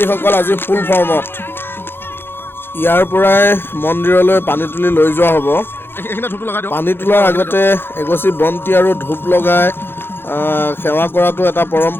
আজি ফুল ফৰ্মত। ইয়াৰ পৰাই মন্দিৰলৈ পানী তুলি লৈ যোৱা হ'ব। পানী তোলাৰ আগতে এগছি বন্তি আৰু ধূপ লগাই সেৱা কৰাটো এটা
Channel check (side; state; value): right; late; 0.10 ms